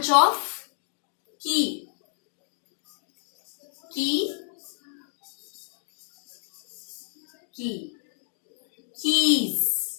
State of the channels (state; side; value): silent; right; 58 dB below the other